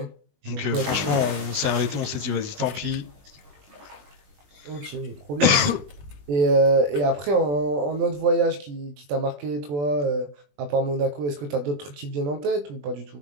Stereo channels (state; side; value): late; left; 20 ms